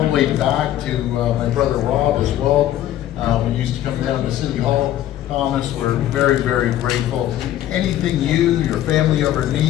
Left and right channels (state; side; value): quieter; right; 12.6 dB